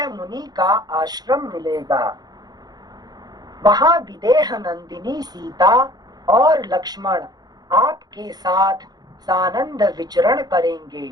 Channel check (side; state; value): left; late; 0.19 ms